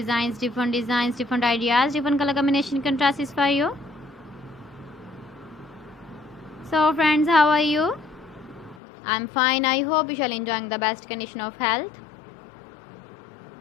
different ideas, different color combination contrasts for you. So friends, how are you? I'm fine. I hope you shall enjoying the best condition of health.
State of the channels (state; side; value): drops out; right; at 8.8 s